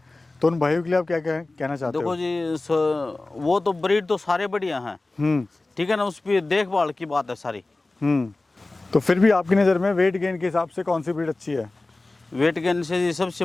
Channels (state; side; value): quieter; right; 3.1 dB